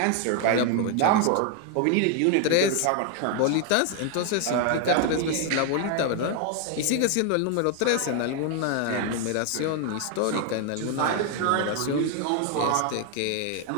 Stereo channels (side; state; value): both; different; correlation 0.01